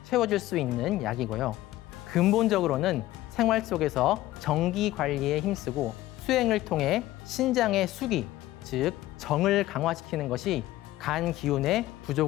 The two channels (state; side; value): quieter; right; 15.9 dB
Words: 채워줄 수 있는 약이고요. 근본적으로는 생활 속에서 정기 관리에 힘쓰고 수행을 통해 신장의 수기, 즉 정을 강화시키는 것이 간 기운의